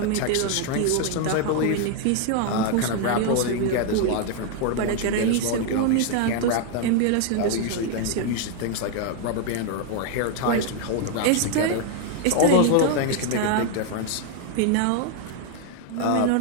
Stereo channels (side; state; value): both; different; correlation 0.01